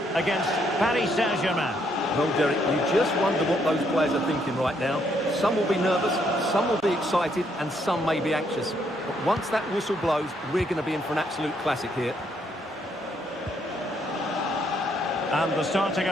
against Paris Saint-Germain. Well, Derek, you just wonder what those players are thinking right now. Some will be nervous, some will be excited, and some may be anxious. But once that whistle blows, we're going to be in for an absolute classic here. And the starting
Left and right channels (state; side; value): normal; both; correlation 0.72